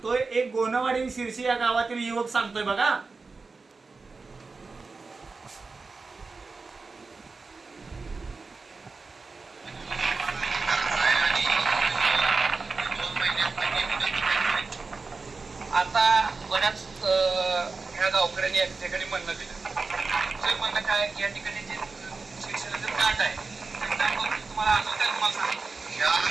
एक गोनवाडी शिरशी या गावातील युवक सांगतोय बघा. आता बऱ्याच ह्या गावकऱ्यांनी या ठिकाणी म्हणणं दिलं. ते म्हणणं काय की या ठिकाणी जे शिक्षणाचं प्लांट आहे त्याबद्दल तुम्हाला आठवत आहे तुम्हाला सांगतो. या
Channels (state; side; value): quieter; left; 4.1 dB